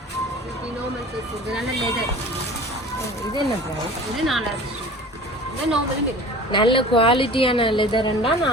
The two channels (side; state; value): both; normal; correlation 0.41